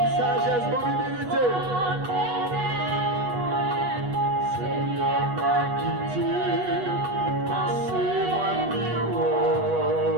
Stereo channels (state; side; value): late; left; 8.2 ms